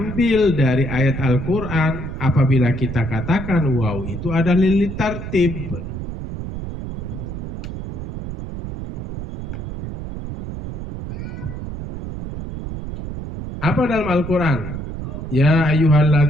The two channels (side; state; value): right; noise; rumble, 7 dB below the sound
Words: dari ayat Al-Quran apabila kita katakan waw itu adalah lit tartib. Apa dalam Al-Quran? Ya